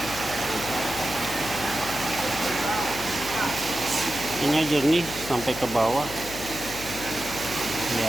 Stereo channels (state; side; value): noise; left; hum, 13 dB below the sound